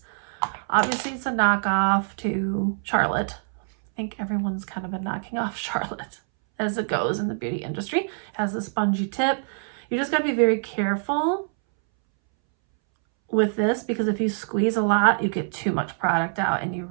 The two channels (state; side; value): silent; left; 62 dB below the other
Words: Obviously, it's a knockoff to Charlotte. I think everyone's kind of been knocking off Charlotte as it goes in the beauty industry. It has a spongy tip. You just got to be very careful with this, because if you squeeze a lot, you get too much product out and you